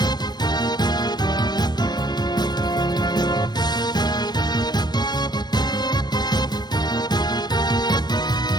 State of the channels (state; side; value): late; right; 0.20 ms